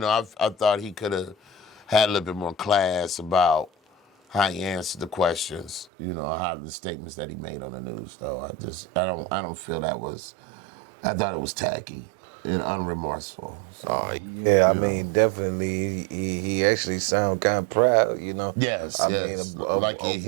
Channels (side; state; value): left; drops out; at 5.9 s